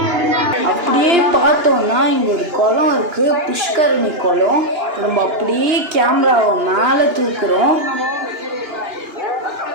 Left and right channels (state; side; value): late; left; 2.9 ms